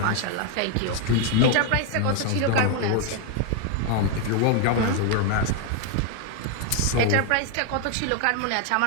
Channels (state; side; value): different; both; correlation 0.00